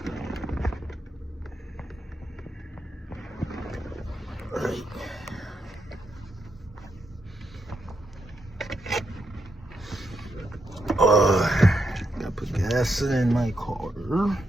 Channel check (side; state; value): both; normal; correlation 0.82